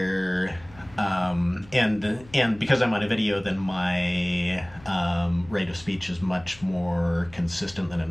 and because I'm on a video, then my rate of speech is much more consistent than it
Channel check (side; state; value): left; noise; hum, 22 dB below the sound